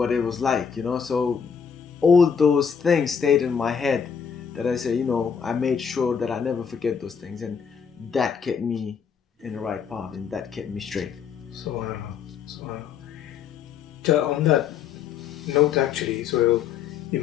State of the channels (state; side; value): quieter; right; 7.0 dB